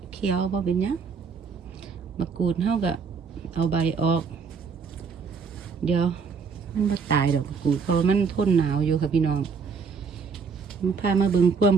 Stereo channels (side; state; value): left; quieter; 5.5 dB